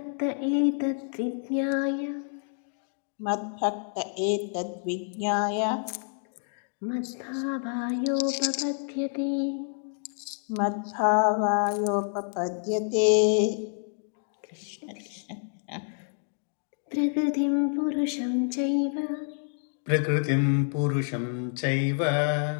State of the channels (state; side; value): silent; right; 59 dB below the other